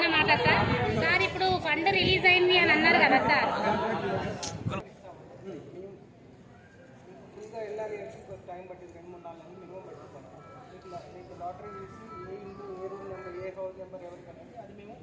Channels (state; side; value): identical; both; correlation 1.00